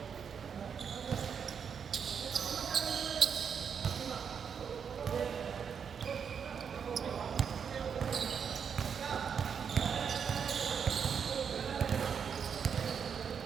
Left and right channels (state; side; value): quieter; left; 7.0 dB